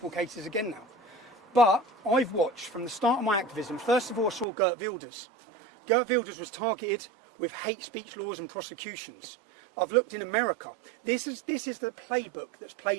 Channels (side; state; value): left; drops out; at 4.5 s